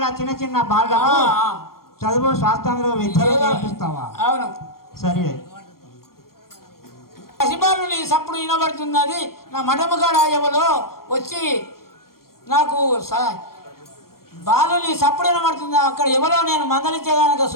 చిన్న చిన్న బాగా చదువు శాస్త్రంలో విద్యలు నేర్పిస్తావా? అవును. సరే, పసిబాలుని సప్పుడు వినబడుతున్నది. నా మఠముగాడ ఎవలో వచ్చి నాకు బాలుని సప్పుడు వినబడుతుంది. అక్కడ ఎవరో నేను మందలించేదానిక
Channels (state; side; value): late; right; 0.93 ms